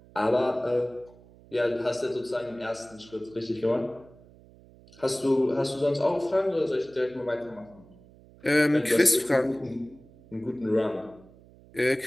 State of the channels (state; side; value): noise; right; hum, 24 dB below the sound